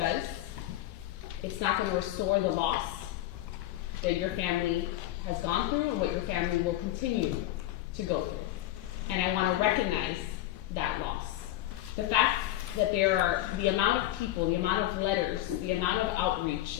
it's not going to restore the loss that your family has gone through and what your family will continue to go through. And I want to recognize that loss. The fact that there are the amount of people, the amount of letters, the amount of outreach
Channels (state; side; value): quieter; right; 14.5 dB